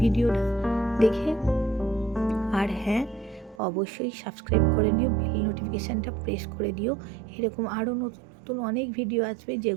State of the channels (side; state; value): left; drops out; at 3.6 s